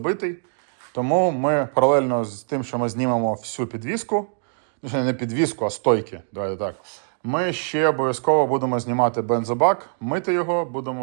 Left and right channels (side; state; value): left; silent; digital silence